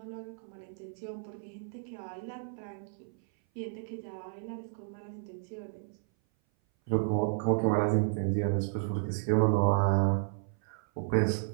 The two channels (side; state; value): left; silent; 56 dB below the other